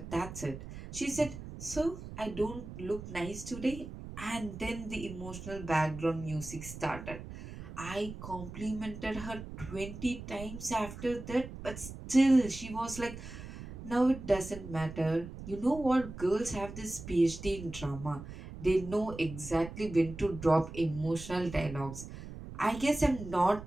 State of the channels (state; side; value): noise; right; rumble, 11 dB below the sound